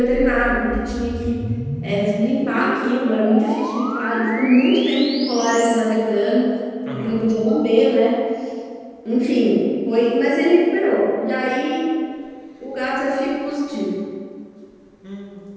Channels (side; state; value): both; identical; correlation 1.00